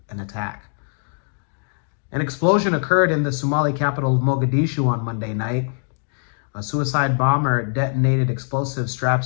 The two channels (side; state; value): right; silent; digital silence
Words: an attack. An explosion occurred in the Somali capital of Mogadishu on Monday night. A suicide bomber detonated explosive straps